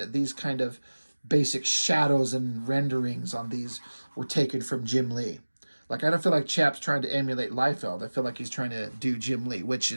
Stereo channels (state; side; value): inverted; both; correlation -1.00